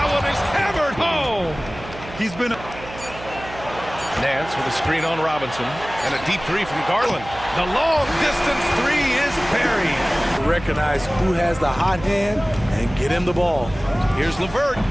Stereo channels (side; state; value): right; noise; hum, 14 dB below the sound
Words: one is hammered home. He's been... Nance with a screen on Robinson. And a deep 3 from Garland. The long distance 3 is buried. Recognize who has the hot hand and get him the ball. Here's LeVert.